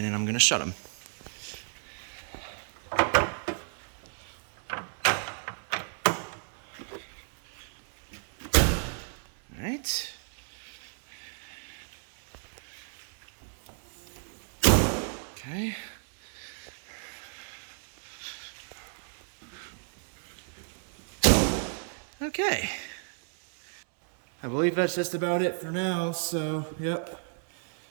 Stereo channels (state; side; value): silent; left; 56 dB below the other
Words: then I'm going to shut them. Alright. Okay. Okay. I believe that's just about it for now, so yep.